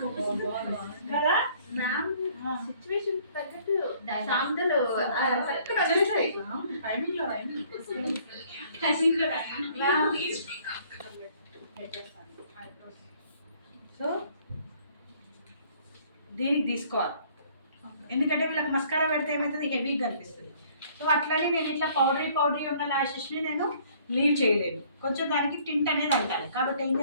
కదా? సిచ్యువేషన్ తగ్గట్టు సాందలు సో దీనికి తీసుకోవాలి, ఎందుకంటే వీళ్ళకి మస్కారా పెడితే ఏమవుతుంది, హెవీగా కనిపిస్తుంది. సో అట్లనే నేను ఇట్లా పౌడరీ ఉన్న ల్యాషెస్ని నేను లీవ్ చేయలేను. కొంచెం దానికి టింట్ అనేది అంటాలి. కాబట్టి ఏం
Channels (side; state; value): both; inverted; correlation -0.59